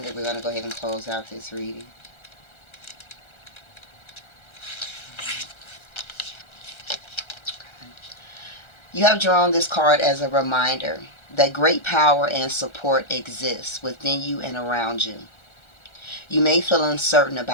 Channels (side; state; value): right; late; 1.3 ms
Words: then we're going to go ahead and close out this reading. You have drawn this card as a reminder that great power and support exists within you and around you. You may feel uncertain